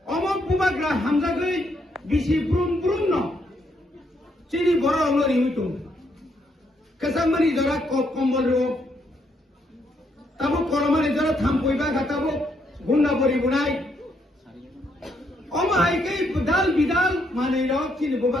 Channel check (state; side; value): normal; both; correlation 0.74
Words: अमक बुबाग्रा हामजागै बिसि ब्रुम ब्रुम न चिनि बरो लरि हुइतो कसामनि जरा कम्बल रो ताबो करमानि जरा थामपयबा गाताबो गुन्ना बरि बुनाय अम हाइकै बुदाल बिदाल मानै र चिनि